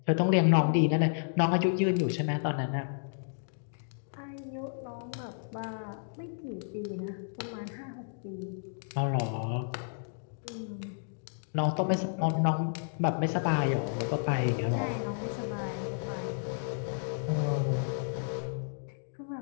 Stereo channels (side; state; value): right; silent; digital silence